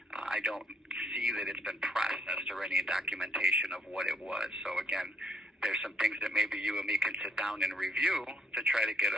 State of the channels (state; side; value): normal; both; correlation 0.68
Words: I don't see that it's been processed or any documentation of what it was. So again, there's some things that maybe you and me can sit down and review to try to get